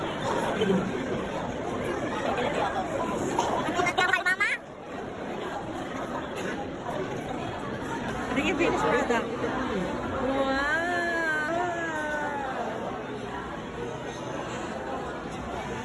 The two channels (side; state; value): both; identical; correlation 1.00